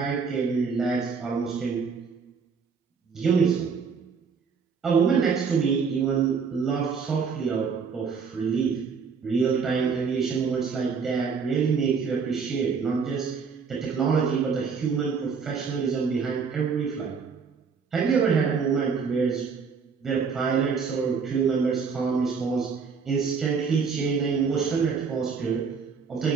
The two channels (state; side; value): quieter; left; 5.7 dB